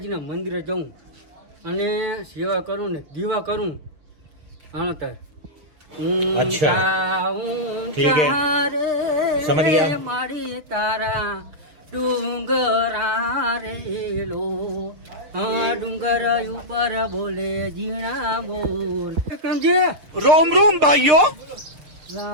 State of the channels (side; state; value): left; late; 6.6 ms